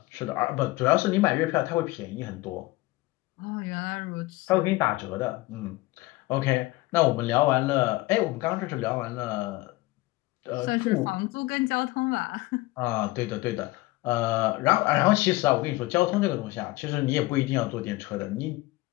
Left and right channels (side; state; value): right; quieter; 19.9 dB